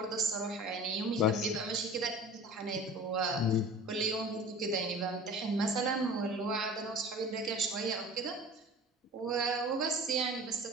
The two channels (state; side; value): normal; both; correlation 0.40